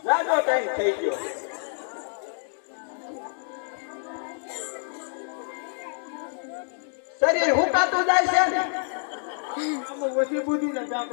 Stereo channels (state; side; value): silent; right; digital silence